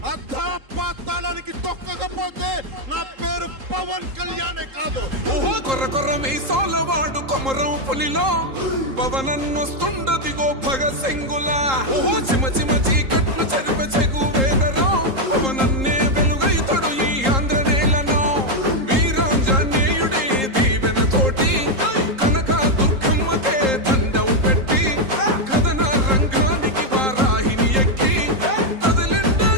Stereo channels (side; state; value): left; late; 3.8 ms